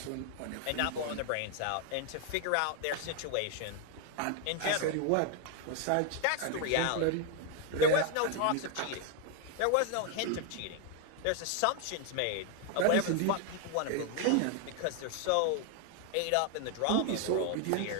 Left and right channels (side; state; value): both; different; correlation 0.01